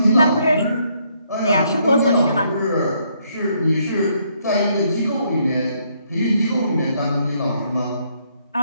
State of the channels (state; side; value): inverted; both; correlation -0.72